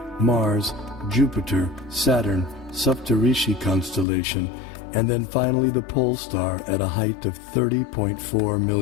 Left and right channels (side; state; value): right; drops out; at 4.0 s